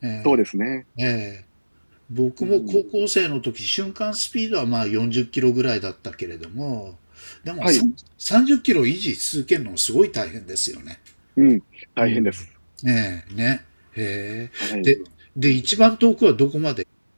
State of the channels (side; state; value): both; inverted; correlation -1.00